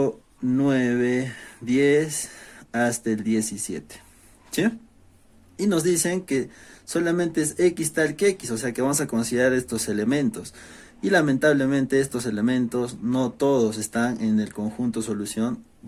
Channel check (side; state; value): both; identical; correlation 1.00